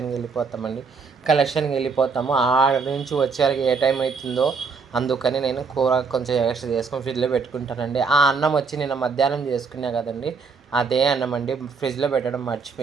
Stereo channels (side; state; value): left; quieter; 5.0 dB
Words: వెళ్ళిపోతామండి. కలెక్షన్కి వెళ్ళిపోతాము. ఆడ నుంచి వచ్చేసరికి ఏ టైం అవుతుందో అందుకని నేను కూర కొంచెం ఎక్స్ట్రా చేసుకొని ఫ్రిడ్జ్లో పెట్టుకుంటానండి. ఆ అన్నం వచ్చి నిన్న మధ్యాహ్నం చేసుకున్నా కదండి, అదే అన్నం అండి. ఫ్రిడ్జ్లో పెట్టడం